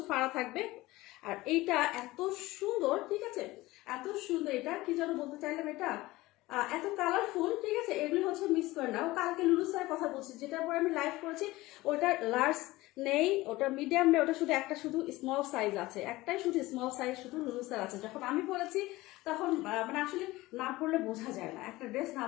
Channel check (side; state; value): right; quieter; 19.1 dB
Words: ফাড়া থাকবে, আর এইটা এত সুন্দর, ঠিক আছে? এত সুন্দর, এটা কি যেন বলতে চাইলাম, এটা এত কালারফুল, ঠিক আছে? এগুলি হচ্ছে মিস করে না। ও কালকে লুলু স্যারের কথা বলছি, যেটার পরে আমি লাইভ করেছি, ওটা লার্জ নেই, ওটা মিডিয়াম নেই, ওটা শুধু একটা শুধু স্মল সাইজ আছে, একটাই শুধু স্মল সাইজ শুধু লুলু স্যার আছে। যখন আমি পরেছি তখন মানে আসলে না পড়লে বোঝা যায় না, একটা ড্রেস না